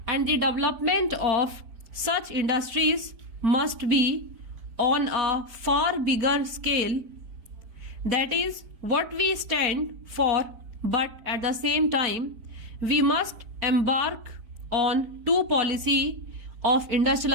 and the development of such industries must be on a far bigger scale. That is what we stand for, but at the same time, we must embark on two policy of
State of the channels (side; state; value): left; late; 4.4 ms